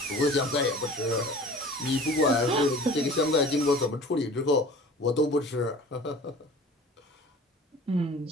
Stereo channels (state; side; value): normal; both; correlation 0.43